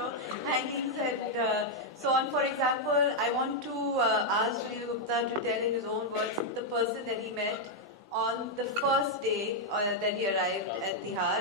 hangings and so on. For example, I want to ask Sunil Gupta to tell in his own words the person that he met on the first day that he arrived at Tihar,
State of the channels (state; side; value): normal; both; correlation -0.02